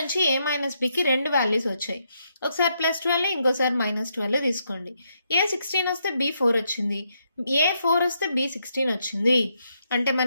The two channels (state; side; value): inverted; both; correlation -0.78